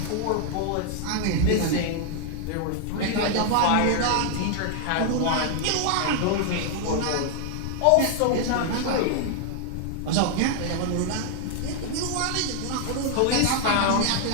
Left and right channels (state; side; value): different; both; correlation 0.00